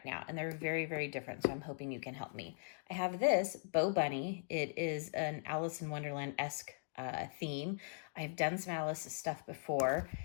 now, and they're very, very different. So I'm hoping you can help me. I have this Bow Bunny. It is an Alice in Wonderland-esque theme. I've done some Alice stuff before.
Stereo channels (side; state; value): right; silent; digital silence